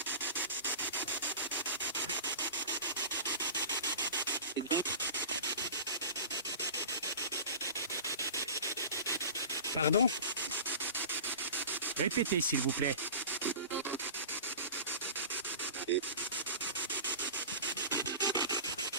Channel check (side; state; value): both; inverted; correlation -0.35